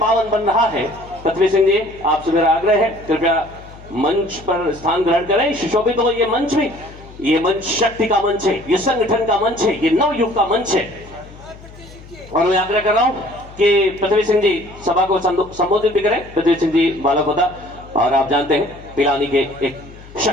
बन रहा है। पृथ्वी सिंह जी, आपसे मेरा आग्रह है, कृपया मंच पर स्थान ग्रहण करें, सुशोभित हो ये मंच भी। ये मंच शक्ति का मंच है, ये संगठन का मंच है, ये नवयुग का मंच है। और मैं आग्रह कर रहा हूं कि पृथ्वी सिंह जी सभा को संबोधित भी करें। पृथ्वी सिंह जी बालापोता, और आप जानते हैं पिलानी के एक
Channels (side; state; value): left; noise; hum, 19 dB below the sound